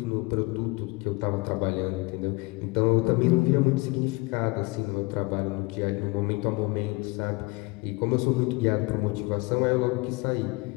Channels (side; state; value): right; quieter; 25.6 dB